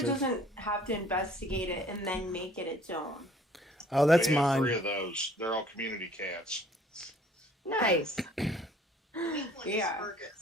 it doesn't have to investigate it and then make it its own. Oh, that's We have mine. 3 of those. They're all community cats. Nice. Pink one Yeah. is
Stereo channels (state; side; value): normal; both; correlation 0.56